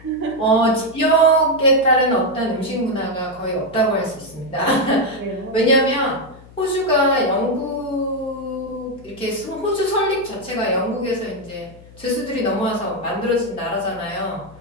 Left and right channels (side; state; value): left; noise; hum, 22 dB below the sound